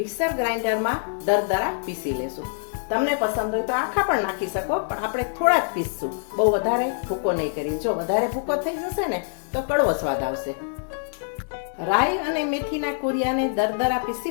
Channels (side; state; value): right; silent; digital silence